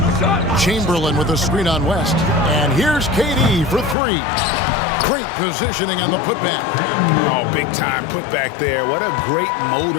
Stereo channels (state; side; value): drops out; right; at 4.0 s